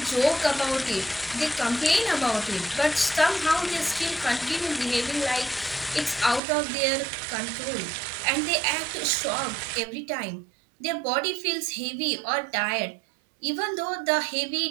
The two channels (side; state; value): left; drops out; at 6.4 s